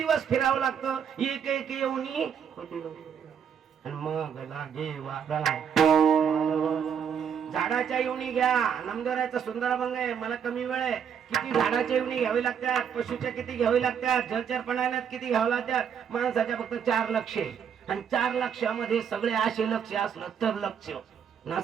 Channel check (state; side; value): quieter; left; 7.7 dB